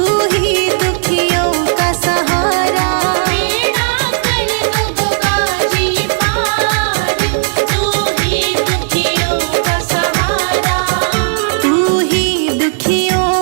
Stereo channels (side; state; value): left; silent; digital silence